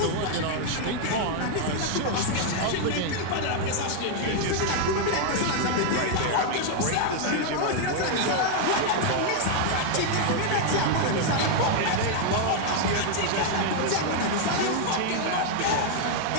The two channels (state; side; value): different; both; correlation 0.00